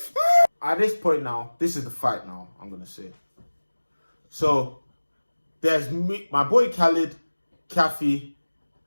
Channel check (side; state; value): both; inverted; correlation -1.00